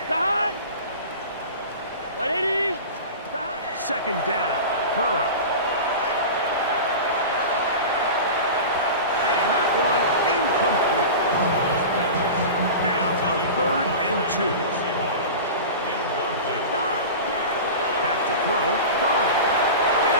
second down. Burrow. And that one incomplete. Now a 3rd and 2. Back to throw. Burrow.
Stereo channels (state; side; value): inverted; both; correlation -0.31